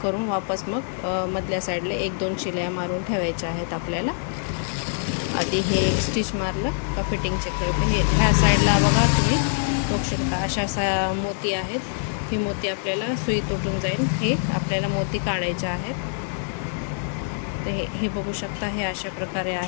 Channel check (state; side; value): silent; right; 62 dB below the other